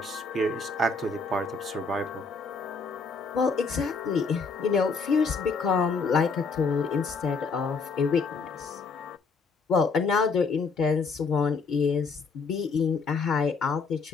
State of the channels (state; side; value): quieter; right; 4.5 dB